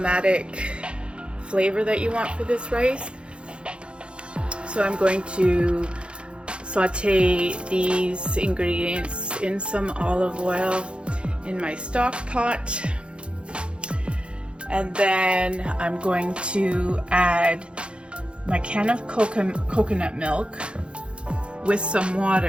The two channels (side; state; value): left; late; 0.057 ms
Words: flavor that you want for this rice. So I'm going to saute these ingredients in some olive oil in my stock pot, and then I'm going to add my can of coconut milk with some